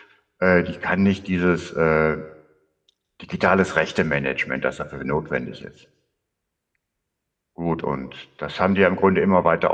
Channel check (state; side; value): identical; both; correlation 1.00